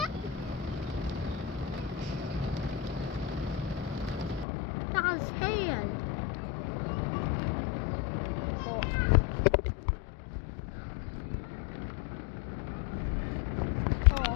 That's hail. Oh.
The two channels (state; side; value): drops out; right; at 4.5 s